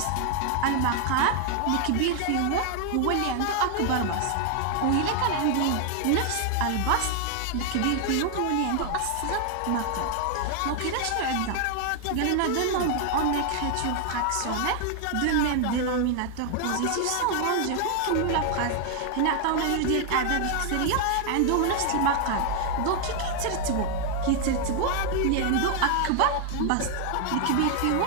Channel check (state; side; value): different; both; correlation 0.00